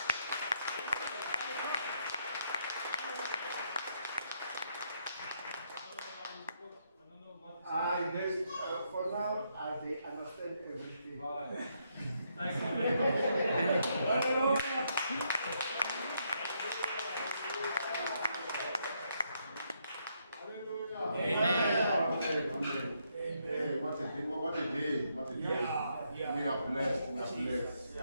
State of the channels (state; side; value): inverted; both; correlation -0.76